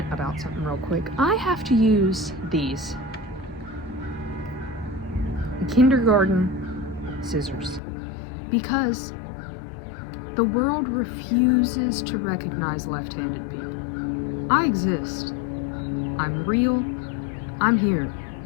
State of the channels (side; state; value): right; drops out; at 7.8 s